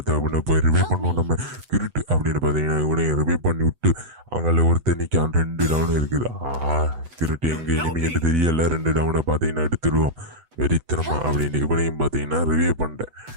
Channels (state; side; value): late; left; 8.0 ms